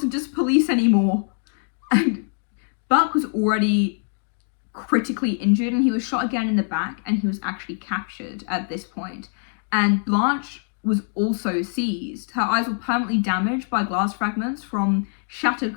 just police anymore. And Buck was already critically injured, and he was shot again in the back, and he was actually captured at this point. And Blanche was also seized. Her eyes were permanently damaged by glass fragments from shattered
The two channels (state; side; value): silent; right; 58 dB below the other